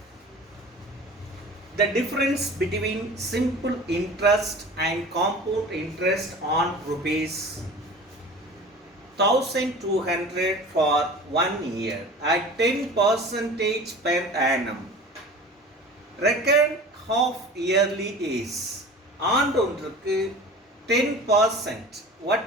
the difference between simple interest and compound interest on rupees 1200 for 1 year at 10% per annum. Reckon half yearly is. ஆண்டொன்றுக்கு 10%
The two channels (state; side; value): normal; both; correlation 0.39